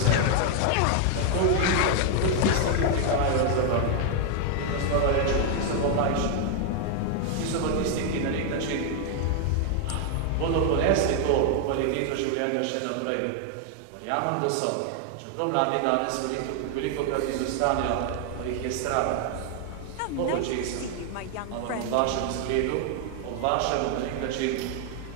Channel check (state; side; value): different; both; correlation 0.00